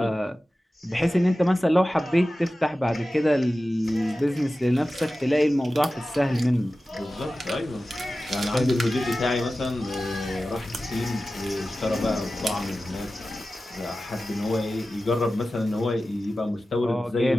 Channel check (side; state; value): both; normal; correlation 0.95